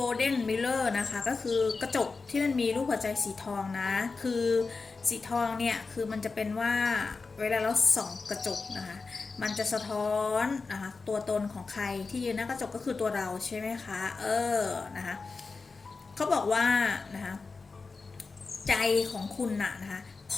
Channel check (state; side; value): quieter; right; 4.3 dB